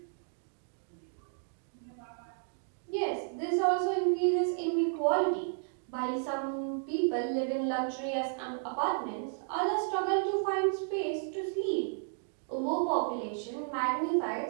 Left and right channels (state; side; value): silent; left; digital silence